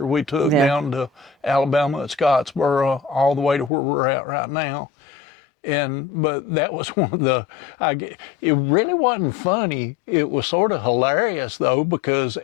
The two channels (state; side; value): drops out; right; at 3.7 s